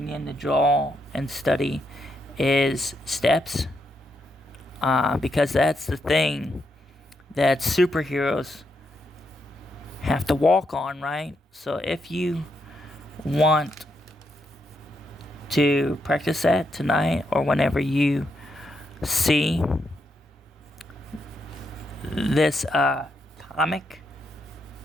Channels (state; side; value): normal; both; correlation 0.80